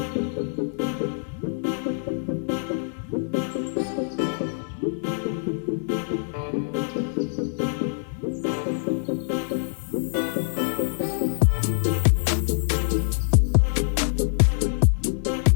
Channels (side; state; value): right; silent; 62 dB below the other